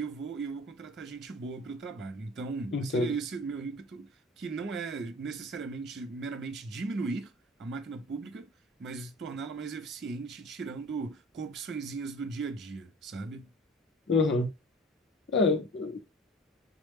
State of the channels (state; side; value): normal; both; correlation 0.43